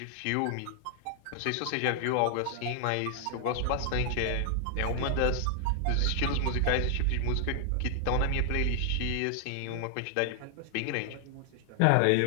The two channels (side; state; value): both; different; correlation 0.00